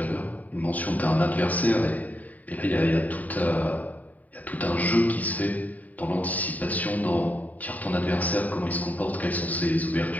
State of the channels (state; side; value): late; right; 0.074 ms